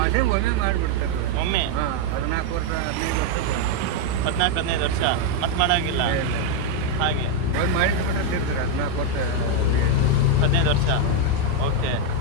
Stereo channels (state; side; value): different; both; correlation 0.01